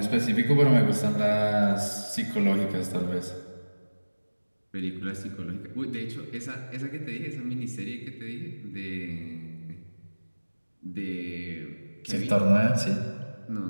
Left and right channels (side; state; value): both; inverted; correlation -1.00